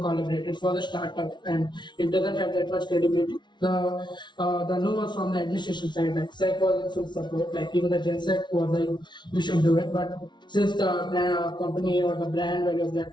it was a startup and it doesn't have that much credibility. The no was from the administration side, like SEC was in full support, like even the GenSec was like, we should do it. But since the company or the brand value of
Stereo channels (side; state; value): right; late; 0.22 ms